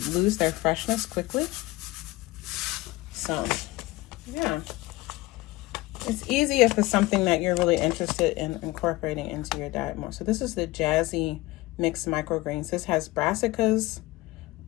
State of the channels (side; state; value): right; quieter; 19.7 dB